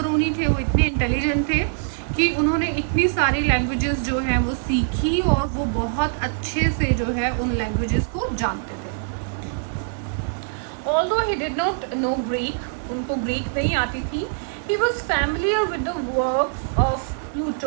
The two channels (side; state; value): left; silent; 59 dB below the other